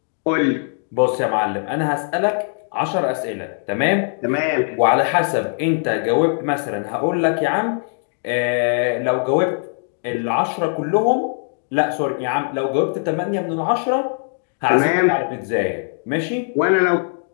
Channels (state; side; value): silent; right; digital silence